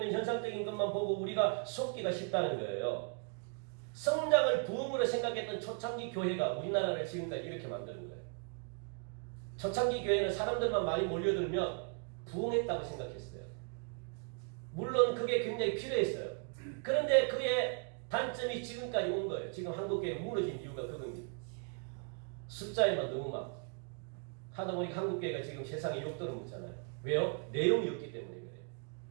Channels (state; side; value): quieter; left; 39.5 dB